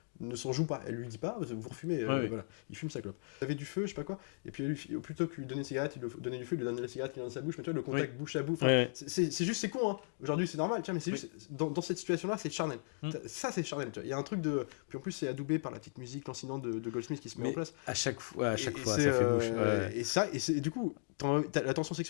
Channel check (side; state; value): right; silent; digital silence